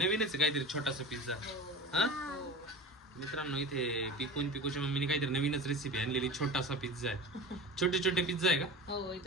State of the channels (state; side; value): normal; both; correlation 0.32